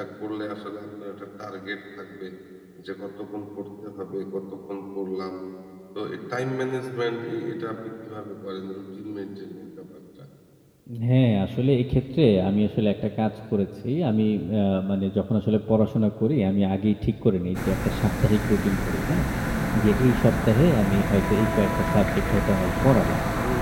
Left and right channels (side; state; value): both; identical; correlation 1.00